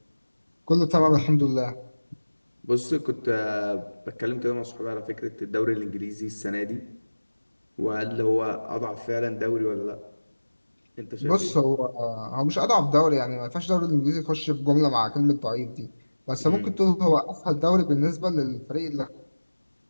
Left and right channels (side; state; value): both; inverted; correlation -1.00